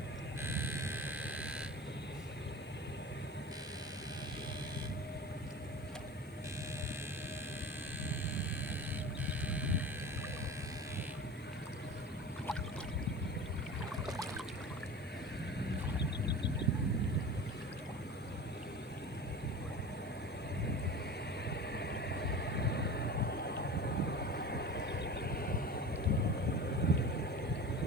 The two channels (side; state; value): right; noise; hiss, 26 dB below the sound